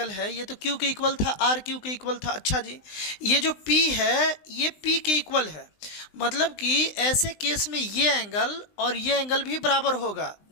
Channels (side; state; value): right; late; 20 ms